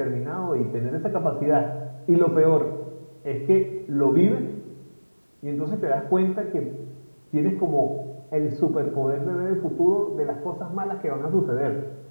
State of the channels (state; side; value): inverted; both; correlation -1.00